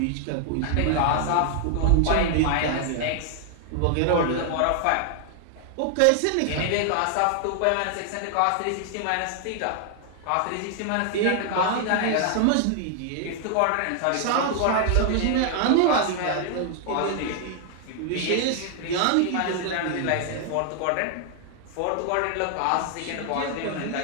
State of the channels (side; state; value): both; different; correlation 0.00